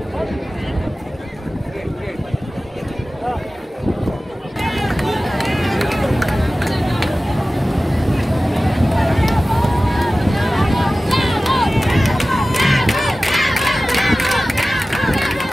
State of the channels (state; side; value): normal; both; correlation 0.96